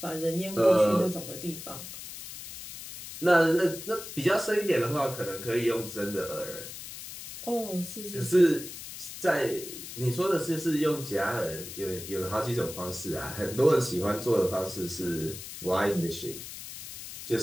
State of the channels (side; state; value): left; noise; hiss, 11 dB below the sound